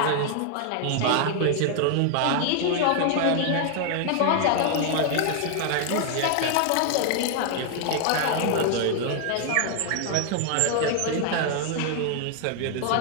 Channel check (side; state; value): both; different; correlation 0.00